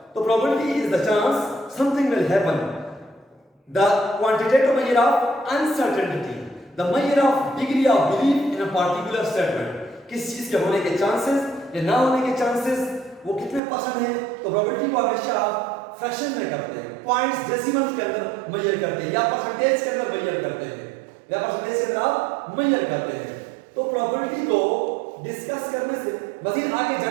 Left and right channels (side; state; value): left; drops out; at 13.6 s